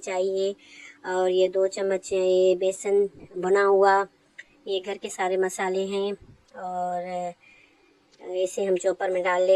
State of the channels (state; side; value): identical; both; correlation 1.00